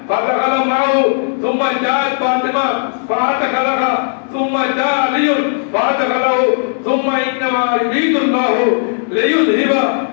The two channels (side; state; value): right; silent; digital silence